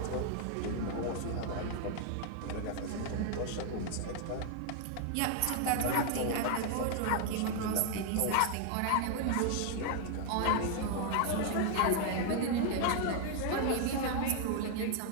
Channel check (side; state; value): both; different; correlation 0.00